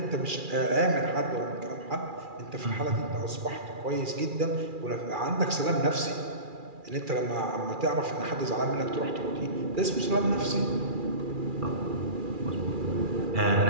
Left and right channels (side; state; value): left; late; 2.4 ms